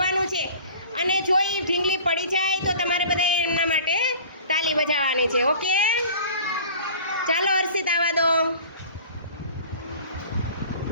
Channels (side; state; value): both; inverted; correlation -0.44